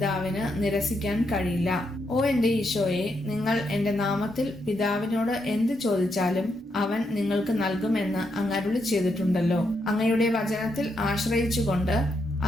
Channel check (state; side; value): normal; both; correlation 0.80